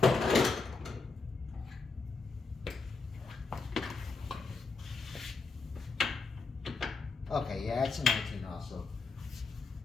Okay, yeah, it's a 19 also.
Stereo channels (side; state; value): right; quieter; 4.2 dB